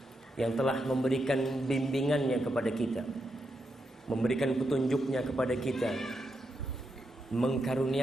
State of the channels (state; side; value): normal; both; correlation 0.84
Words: yang telah memberikan bimbingannya kepada kita, memberikan petunjuknya kepada kita,